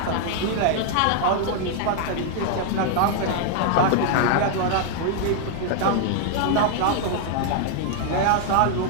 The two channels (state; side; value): different; both; correlation 0.00